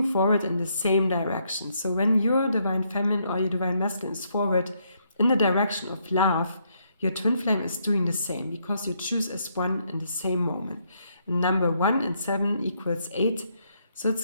forward in the same direction. So when your divine feminine or your divine masculine is forward in the direction of love, your twin flame is doing the same, because you choose as one in the same moment. And number 1 and 7 equals 8. So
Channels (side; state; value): both; inverted; correlation -0.74